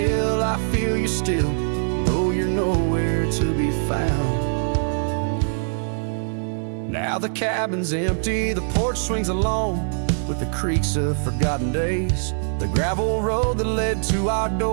I feel you still, though you're nowhere to be found. Now the cabin's empty, the porch swings alone with the creaks of forgotten days. The gravel road that led to our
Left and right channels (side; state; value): left; silent; 64 dB below the other